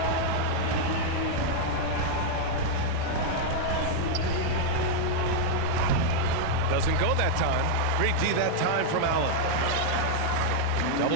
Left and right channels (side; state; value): both; different; correlation -0.01